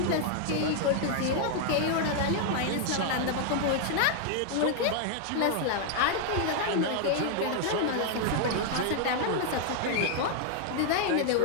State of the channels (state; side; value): different; both; correlation 0.00